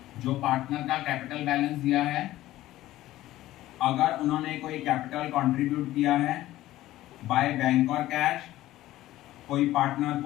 जो पार्टनर का कैपिटल बैलेंस दिया है। अगर उन्होंने कोई कैपिटल कंट्रीब्यूट किया है बाय बैंक और कैश, कोई पार्टनर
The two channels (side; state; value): right; quieter; 15.4 dB